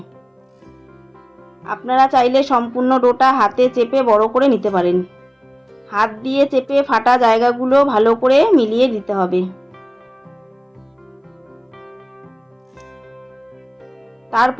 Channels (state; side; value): identical; both; correlation 1.00